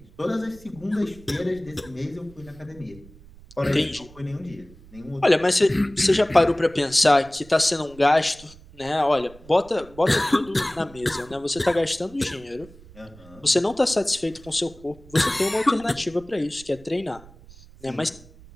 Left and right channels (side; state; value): right; noise; rumble, 22 dB below the sound